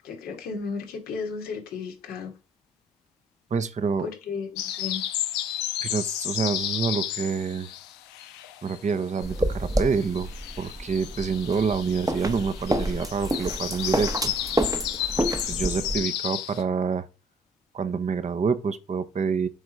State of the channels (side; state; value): both; normal; correlation 0.61